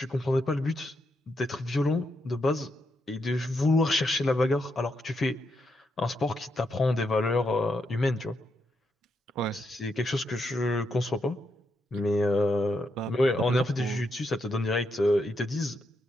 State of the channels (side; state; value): both; normal; correlation 0.81